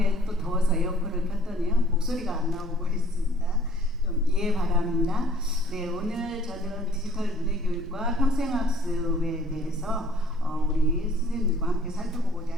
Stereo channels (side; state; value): both; normal; correlation 0.55